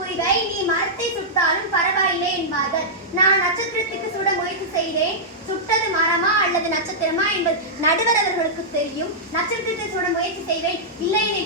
நீ மரத்தை சுட்டாலும் பரவாயில்லை என்பார்கள். நான் நட்சத்திரத்துக்கு சுட முயற்சி செய்தேன். சுட்டது மரமா அல்லது நட்சத்திரமா என்பது நடுவர் அவர்களுக்கு தெரியும். நட்சத்திரத்தை சுட முயற்சி செய்வேன், இல்லை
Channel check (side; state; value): both; normal; correlation -0.11